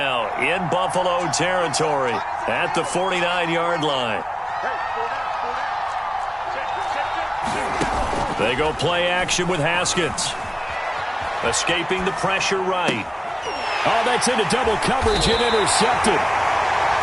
in Buffalo territory at the 49-yard line. They go play action with Haskins. Escaping the pressure right. Oh, that's into double coverage and intercepted.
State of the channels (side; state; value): both; identical; correlation 1.00